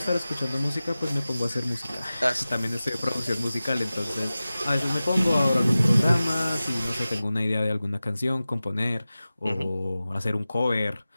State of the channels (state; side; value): inverted; both; correlation -0.96